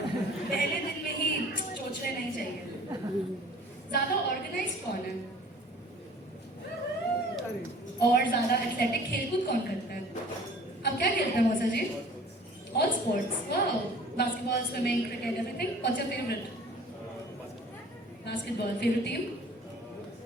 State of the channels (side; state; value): both; normal; correlation 0.49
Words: पहले दिन में ही सोचने नहीं चाहिए। ज्यादा ऑर्गेनाइज्ड कौन है? और ज्यादा एथलेटिक खेलकूद कौन करता है? अब क्या खेलते हैं मौसा जी? All sports. Wow. Basketball, swimming, cricket, everything. What's your favorite? Basketball. Favorite team?